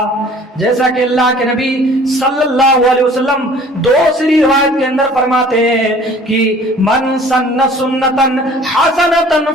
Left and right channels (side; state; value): both; normal; correlation 0.50